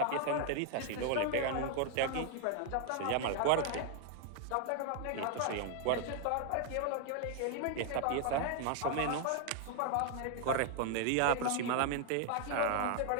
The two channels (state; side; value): different; both; correlation 0.00